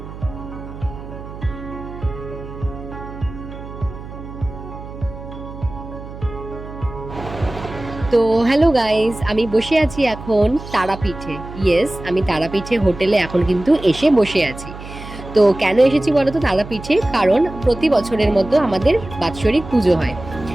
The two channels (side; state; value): right; noise; hum, 13 dB below the sound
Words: তো হ্যালো গাইস, আমি বসে আছি এখন তারাপীঠে। ইয়েস, আমি তারাপীঠে হোটেলে এখন কিন্তু এসে বসে আছি। তো কেন এসেছি বলো তো তারাপীঠে? কারণ প্রতি বছরের মতো আমাদের বাৎসরিক পুজো হয়।